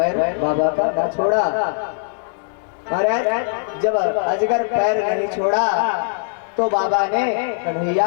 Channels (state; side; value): silent; right; digital silence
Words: बाबा का ना छोड़ा। महाराज जब अजगर पैर नहीं छोड़ा तो बाबा ने